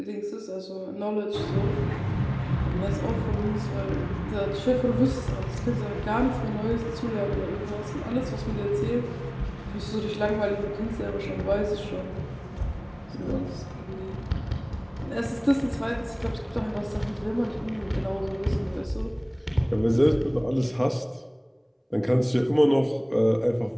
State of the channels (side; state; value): both; identical; correlation 1.00